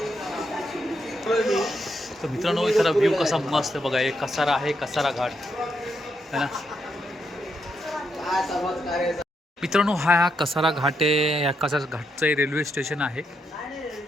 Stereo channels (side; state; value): both; normal; correlation 0.80